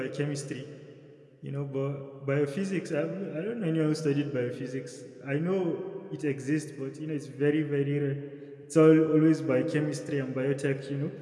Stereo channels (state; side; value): identical; both; correlation 1.00